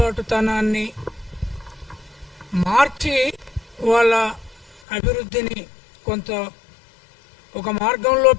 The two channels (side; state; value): right; drops out; at 4.8 s